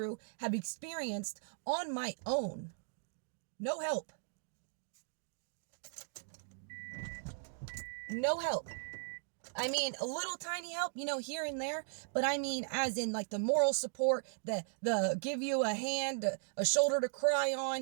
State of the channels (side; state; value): left; silent; digital silence